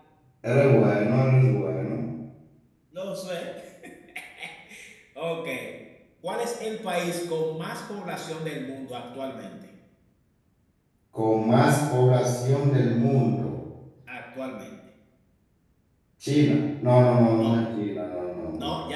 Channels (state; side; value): identical; both; correlation 1.00